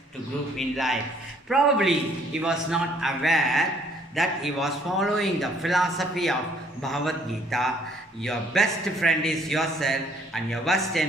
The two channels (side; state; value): both; normal; correlation 0.62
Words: to group in life. Probably he was not aware that he was following the philosophy of Bhagavad Gita. Your best friend is yourself and your worst